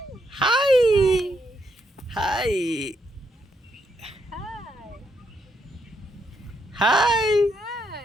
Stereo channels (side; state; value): both; normal; correlation 0.78